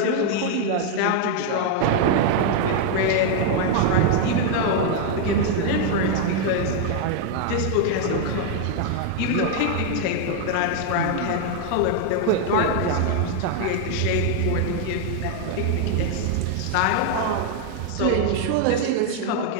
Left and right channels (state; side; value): different; both; correlation 0.00